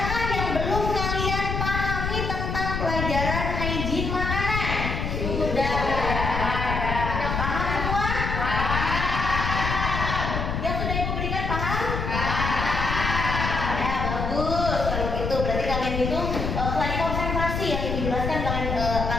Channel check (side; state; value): left; noise; rumble, 2 dB below the sound